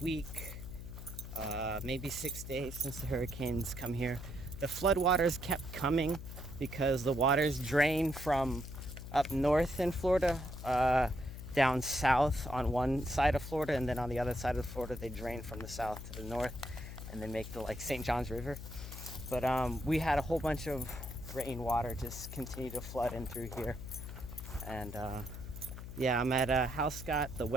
maybe 6 days since the hurricanes come here. The floodwaters kept coming because the waters drain from up north in Florida, down south on one side of Florida, and then on the other side of Florida they drain from the south to the north and then make the St. John's River. But we had a whole bunch of rainwater just continue to flood in through here. And yeah, I'm at Housecott, the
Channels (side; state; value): left; noise; hum, 10 dB below the sound